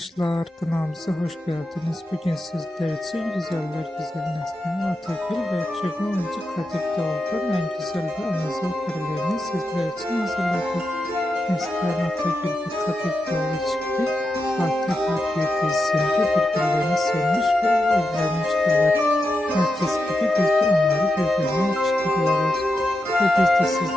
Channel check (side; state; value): both; normal; correlation 0.88